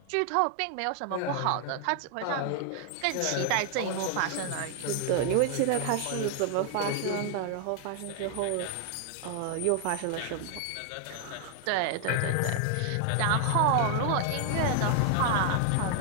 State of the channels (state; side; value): different; both; correlation 0.00